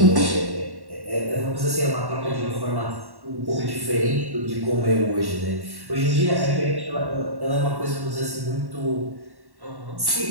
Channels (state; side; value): late; left; 1.1 ms